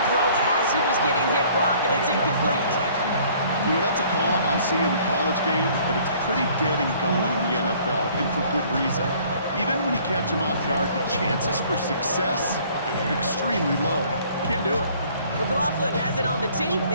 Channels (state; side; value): inverted; both; correlation -0.57